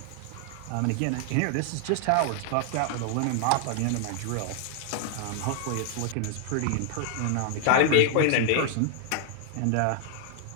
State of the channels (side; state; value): both; different; correlation 0.00